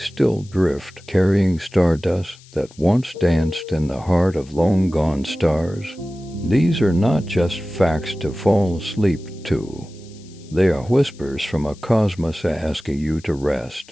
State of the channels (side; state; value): left; noise; hiss, 25 dB below the sound